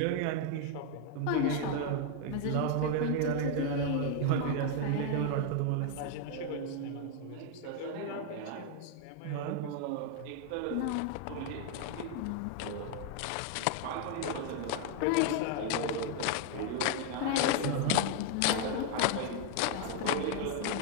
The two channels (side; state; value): both; different; correlation 0.00